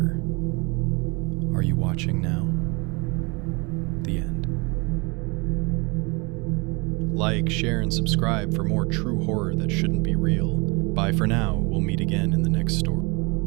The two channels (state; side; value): quieter; left; 29.0 dB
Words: "Are you watching now?" The end. Like, share, and subscribe for more true horror that shouldn't be real. Bye for now. We'll meet again in the next story.